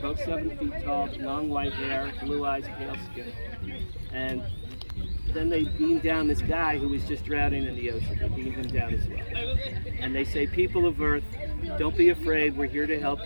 7 feet tall, long white hair, blue eyes, pale skin. And then they beam down this guy who was just drowning in the ocean. They beam him down as well. And they say, people of Earth, don't be afraid, we're here to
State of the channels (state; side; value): inverted; both; correlation -1.00